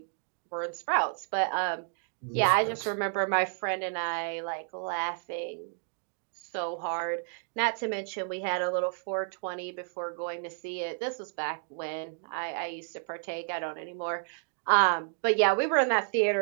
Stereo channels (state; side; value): silent; left; digital silence